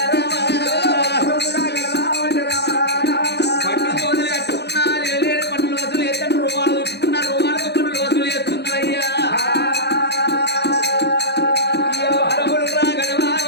పన్ను తోలు కట్టుకున్నా లేని పన్నులు వసూలు చేస్తాను, రుమాలు చుట్టుకున్నా రుమాలకు పన్నులు వసూలు చేస్తున్నారయ్యా. అరవులు రాగడమా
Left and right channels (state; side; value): late; right; 0.49 ms